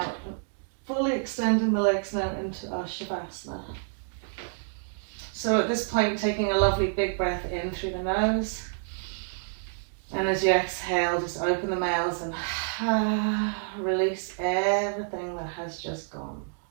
fully extending the legs now into our Shavasana. So at this point, taking a lovely big breath in through the nose. And as you exhale, just open the mouth and release everything that has just gone.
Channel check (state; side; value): silent; left; digital silence